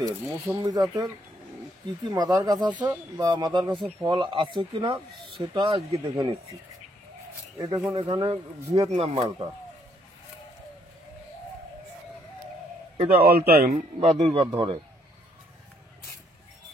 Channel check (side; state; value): both; normal; correlation 0.70